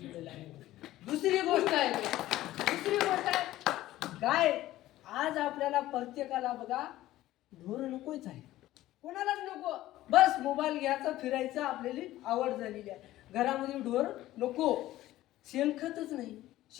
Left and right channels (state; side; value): quieter; right; 15.3 dB